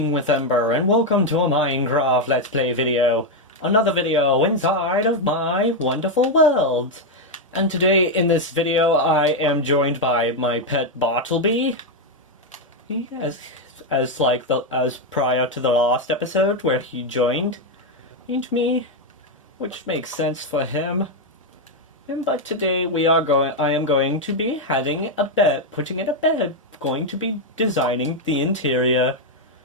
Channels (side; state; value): both; normal; correlation 0.03